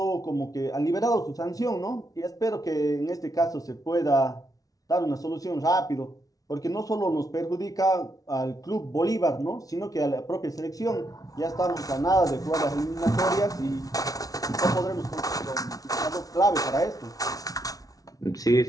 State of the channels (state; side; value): late; right; 0.18 ms